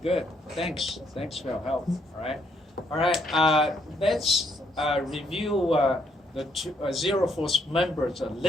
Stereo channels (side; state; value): both; normal; correlation 0.72